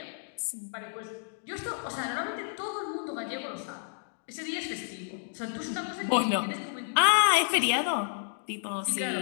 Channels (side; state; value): right; silent; digital silence